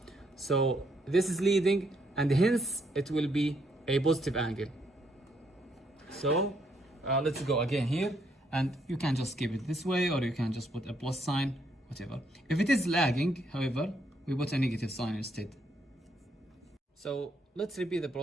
So this is leading, and hence it will be a positive angle. So let's go again here, and you can just keep it this way, or you can just put a plus sign, whatever. If it is lagging, however, we put a negative sign instead. So let's repeat the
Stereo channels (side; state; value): both; normal; correlation 0.73